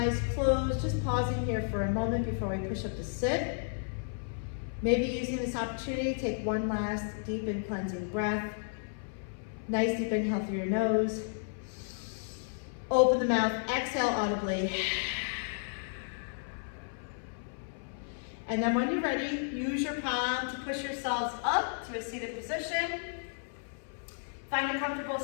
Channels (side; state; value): right; silent; 56 dB below the other